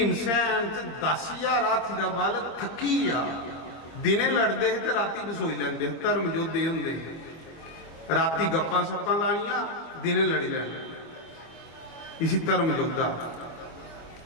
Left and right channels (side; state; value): right; late; 25 ms